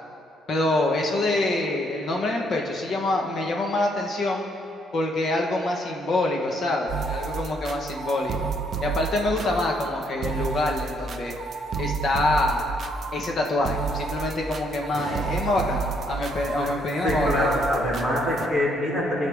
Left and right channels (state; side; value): normal; both; correlation 0.71